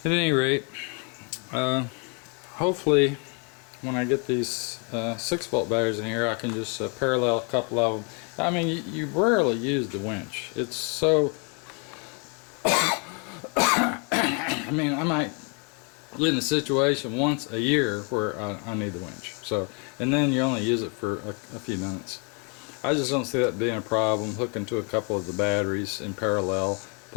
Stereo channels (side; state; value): right; quieter; 35.9 dB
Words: at any rate, hopefully when I get these 6-volt batteries in here, I can just parallel a couple of them. I mean, you rarely use the winch. It's so I mean, I might get in a situation once a year where I need the winch. So, and then you only use it for a few minutes. I just don't see that being a problem, hooking to a couple of the batteries in parallel,